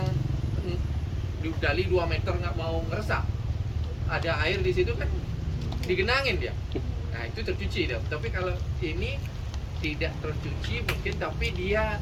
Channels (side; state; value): both; identical; correlation 1.00